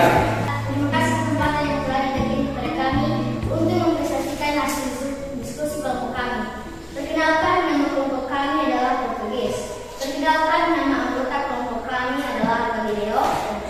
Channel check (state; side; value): identical; both; correlation 1.00